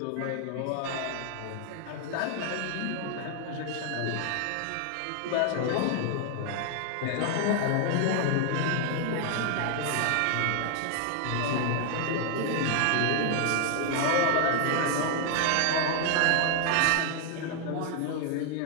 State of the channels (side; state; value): both; different; correlation 0.00